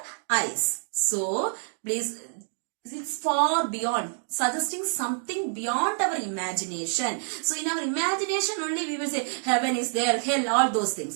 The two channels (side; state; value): left; silent; 59 dB below the other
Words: eyes. So, please, it's far beyond, suggesting something beyond our imagination. So, in our imagination only we will say heaven is there, hell, all those